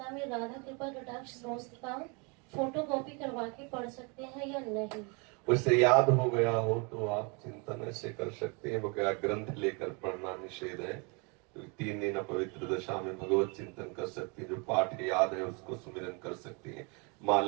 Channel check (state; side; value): quieter; left; 32.2 dB